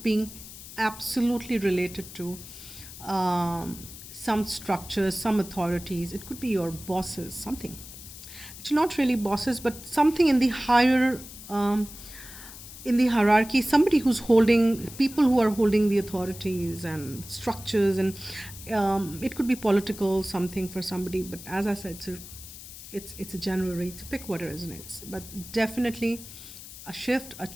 being absolutely related to some structures, some authorities. It could be your bosses, something. It's not really bosses, but something in the higher, in the hierarchy, somebody who's holding, people who are holding the authorities and structures, and it could be political, something for somebody. But as I said, it's a general read, to pick what it resonates. But definitely a shift, a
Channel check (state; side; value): noise; left; hiss, 15 dB below the sound